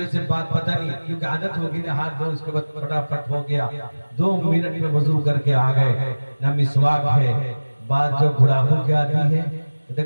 से बात पता नहीं, क्योंकि आदत होगी ना, हाथ धो उसके बाद फटाफट हो गया, 2 मिनट में वजू करके आ गए। ना मिसवाक है, बात जो गुड़ाखू के आती है,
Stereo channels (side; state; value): both; inverted; correlation -1.00